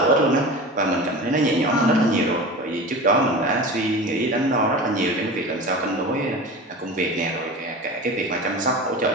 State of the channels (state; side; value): normal; both; correlation 0.32